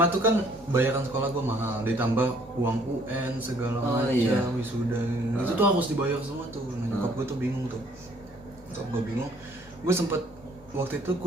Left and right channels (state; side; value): normal; both; correlation 0.61